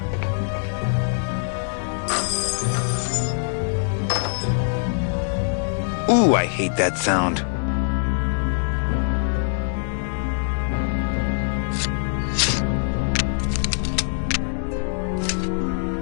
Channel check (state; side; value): silent; right; 63 dB below the other